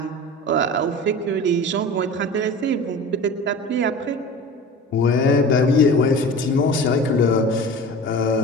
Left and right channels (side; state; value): both; normal; correlation 0.36